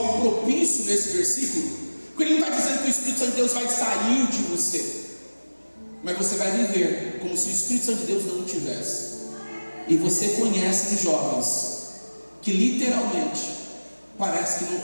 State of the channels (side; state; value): both; inverted; correlation -1.00